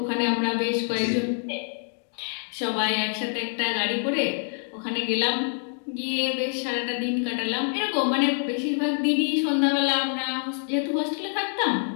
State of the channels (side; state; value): right; silent; 55 dB below the other